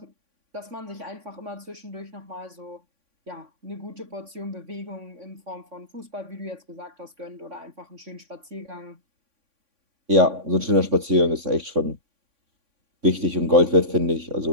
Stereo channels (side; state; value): left; late; 3.5 ms